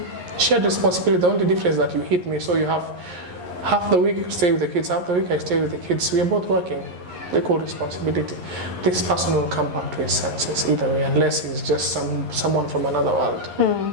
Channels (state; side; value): late; left; 11 ms